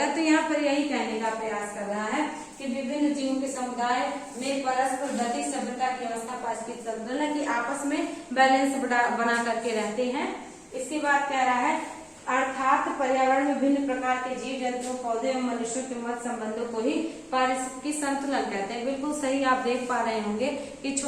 तो यहाँ पर यही कहने का प्रयास कर रहा है कि विभिन्न जीवों के समुदाय में परस्पर गतिक सभ्यता की अवस्था पारिस्थितिकी संतुलन की आपस में बैलेंस बना करके रहते हैं। इसके बाद कह रहा है अर्थात पर्यावरण में विभिन्न प्रकार के जीव जंतुओं, पौधे एवं मनुष्यों के मध्य संबंधों को ही पारिस्थितिकी संतुलन कहते हैं। बिल्कुल सही। आप देख पा रहे होंगे कि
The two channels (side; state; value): both; identical; correlation 1.00